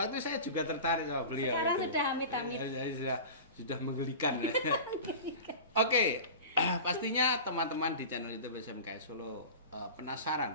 saya juga tertarik sama beliau. Sekarang itu. sudah amit-amit. Sudah menggelikan. Oke, pastinya teman-teman di channel YouTube SMKI Solo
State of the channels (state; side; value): inverted; both; correlation -0.33